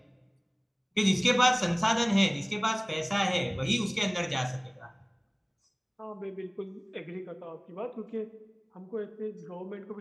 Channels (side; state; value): both; identical; correlation 1.00